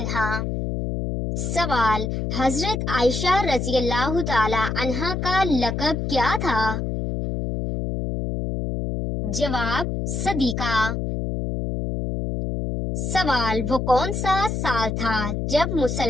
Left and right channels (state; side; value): noise; left; hum, 2 dB below the sound